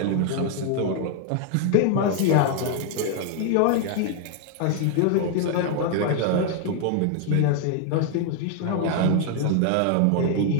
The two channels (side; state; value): both; different; correlation 0.01